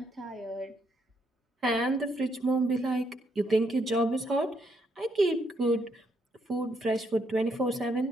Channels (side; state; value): both; normal; correlation 0.75